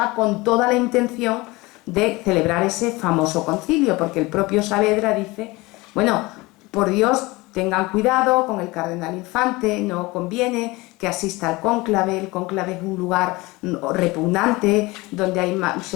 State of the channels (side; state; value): right; quieter; 22.3 dB